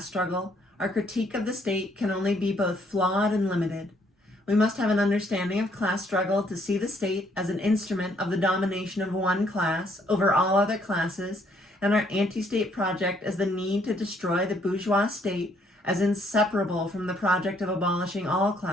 struggle, our critique of the state can only be both flawed and limited. We must have an understanding of class struggle to see the state as an instrument of the domination of one class over all other classes, and our anti-state project as the need to destroy the bourgeois state as inseparable from the project of abolishing all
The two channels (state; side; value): normal; both; correlation 0.67